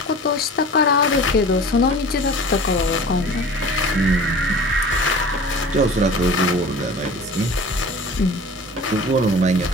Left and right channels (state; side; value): normal; both; correlation 0.40